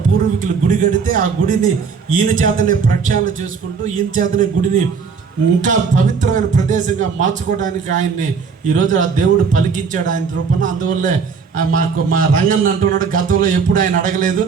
పూర్వీకులు గుడి కడితే ఆ గుడిని ఈయన చేతనే ప్రక్షాళన చేసుకుంటూ ఈయన చేతనే గుడిని ఇంకా పవిత్రమైన ప్రదేశంగా మార్చుకోవడానికి ఆయన్ని ఈరోజు ఆ దేవుడు పలికించాడు ఆయన రూపంలో. అందువల్లే మా రంగన్న అంటున్నాడు, గతంలో ఎప్పుడు ఆయన అడగలేదు,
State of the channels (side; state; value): left; quieter; 5.6 dB